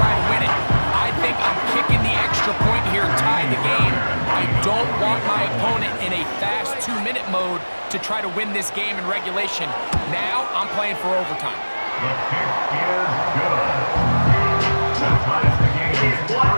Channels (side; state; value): both; inverted; correlation -1.00